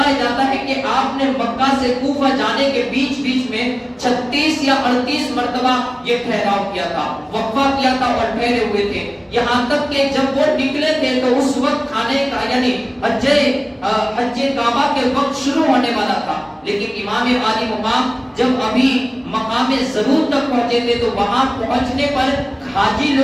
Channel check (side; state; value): both; identical; correlation 1.00